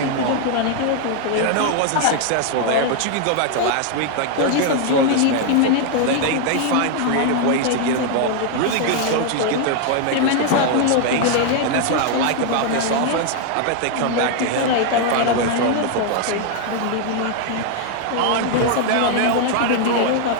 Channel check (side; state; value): both; different; correlation 0.00